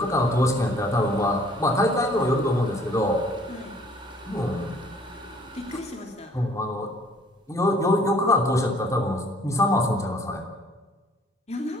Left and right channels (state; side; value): normal; both; correlation 0.57